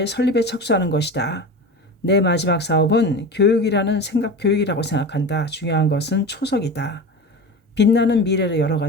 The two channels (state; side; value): normal; both; correlation 0.29